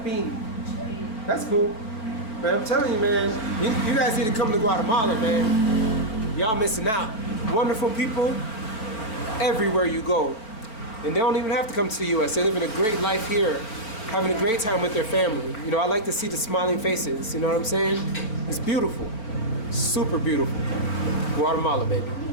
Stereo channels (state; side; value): late; right; 4.5 ms